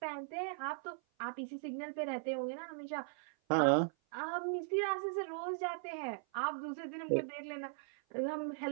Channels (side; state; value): left; silent; 52 dB below the other